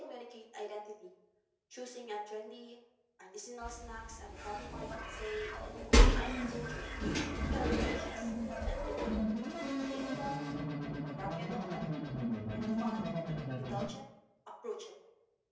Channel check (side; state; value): both; identical; correlation 1.00